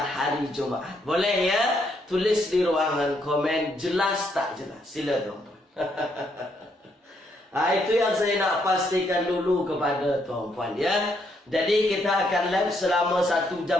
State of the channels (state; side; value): normal; both; correlation 0.74